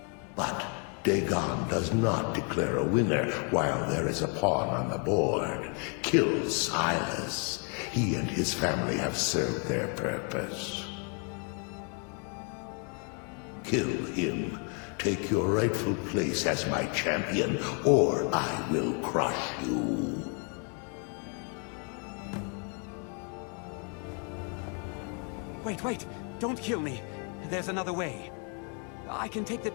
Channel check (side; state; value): right; quieter; 39.1 dB